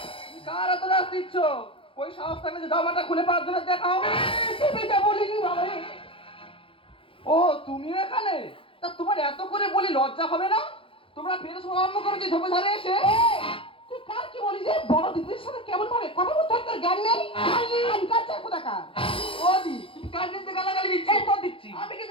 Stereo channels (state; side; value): late; right; 0.26 ms